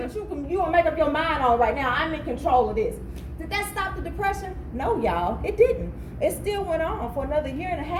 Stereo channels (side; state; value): both; identical; correlation 1.00